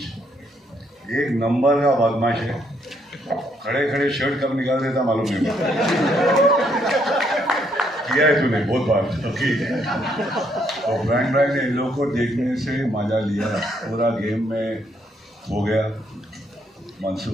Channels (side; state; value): both; normal; correlation 0.72